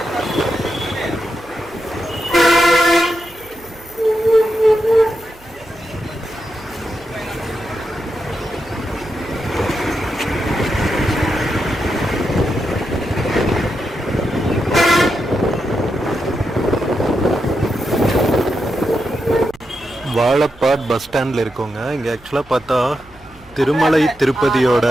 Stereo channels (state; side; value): noise; right; hum, 25 dB below the sound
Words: வாழப்பாட் பஸ் ஸ்டாண்டில் இருக்கோங்க. இங்கே ஆக்சுவலாக பார்த்தா திருமலை திருப்பதியோட